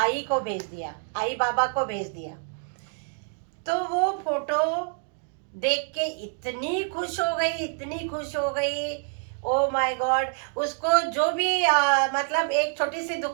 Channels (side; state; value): left; silent; 60 dB below the other